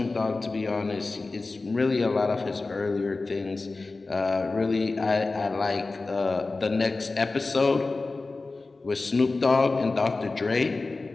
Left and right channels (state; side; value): quieter; right; 3.5 dB